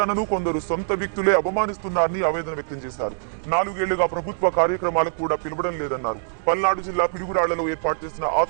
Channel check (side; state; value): left; silent; digital silence